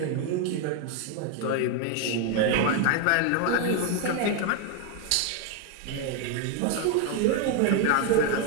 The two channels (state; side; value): different; both; correlation 0.01